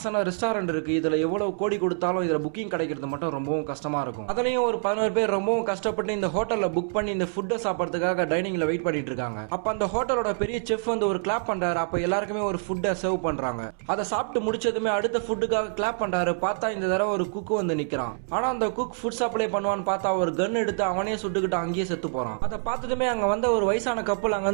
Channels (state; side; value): silent; left; 59 dB below the other